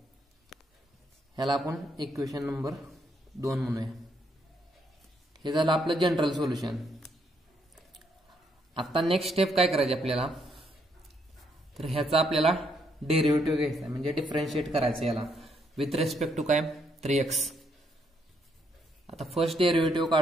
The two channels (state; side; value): normal; both; correlation 0.73